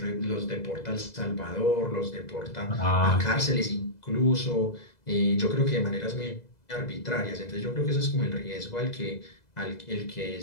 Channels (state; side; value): late; right; 2.0 ms